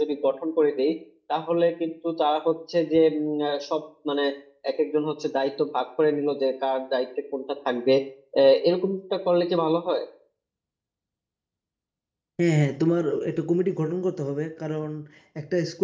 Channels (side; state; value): both; identical; correlation 1.00